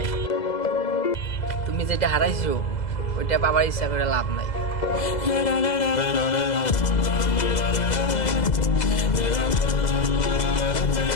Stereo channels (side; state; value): right; late; 2.0 ms